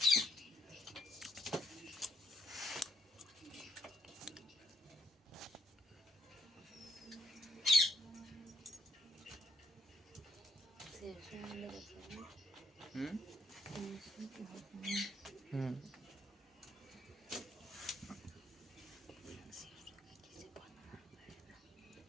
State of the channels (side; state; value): both; normal; correlation 0.71